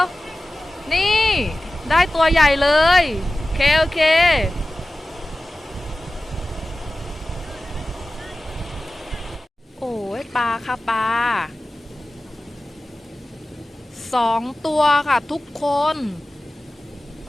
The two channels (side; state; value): both; normal; correlation 0.96